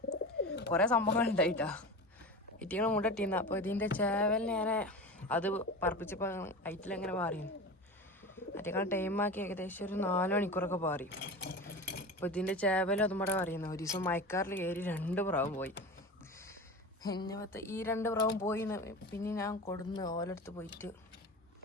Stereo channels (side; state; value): both; normal; correlation 0.29